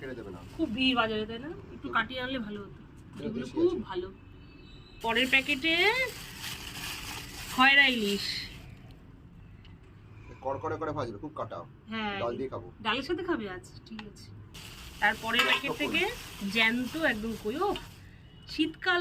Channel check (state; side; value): identical; both; correlation 1.00